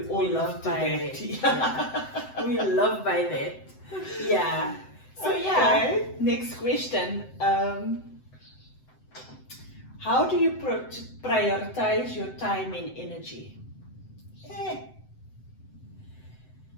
all love by that. Yeah. We love by that. Yeah. So okay. Next question. How do you prioritize your time and energy? I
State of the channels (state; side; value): late; right; 7.8 ms